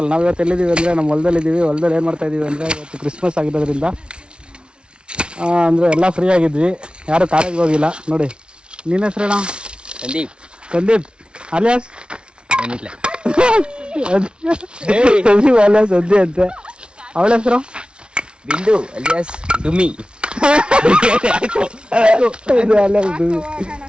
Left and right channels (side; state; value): left; late; 0.057 ms